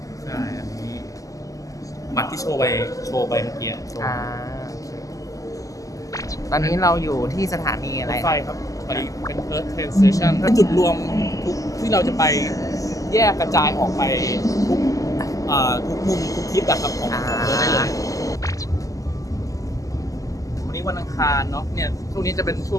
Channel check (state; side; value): late; right; 0.17 ms